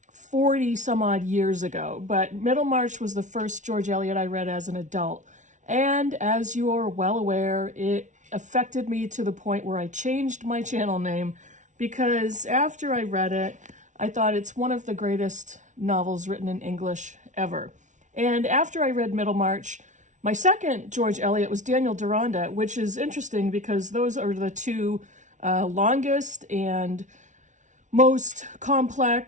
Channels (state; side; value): late; left; 0.36 ms